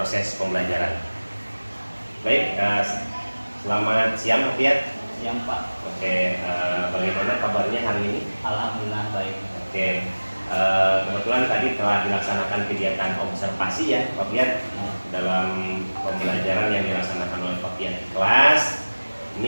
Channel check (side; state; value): both; inverted; correlation -1.00